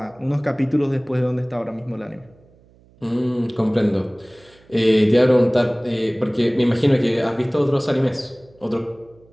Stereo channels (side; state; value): right; noise; hum, 29 dB below the sound